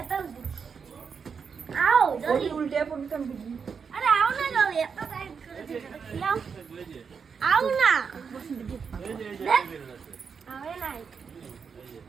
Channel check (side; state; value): left; quieter; 6.1 dB